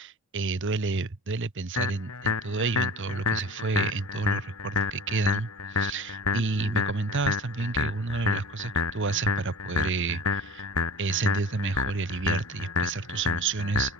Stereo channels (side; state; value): both; normal; correlation 0.39